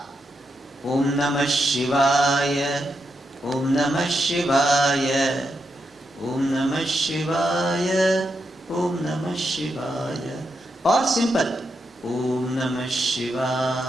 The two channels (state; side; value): normal; both; correlation 0.84